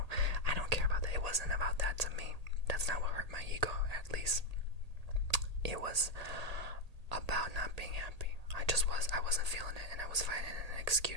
I don't care about that. It wasn't about that to me. That's not what hurt my ego, at least. It was about not being happy. I wasn't feeling it, and I was finding an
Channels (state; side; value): late; left; 1.8 ms